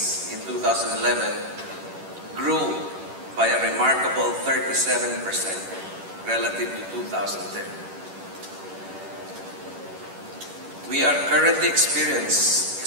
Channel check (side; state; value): left; late; 10 ms